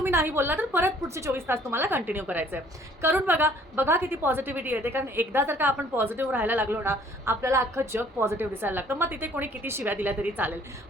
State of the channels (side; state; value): both; normal; correlation 0.58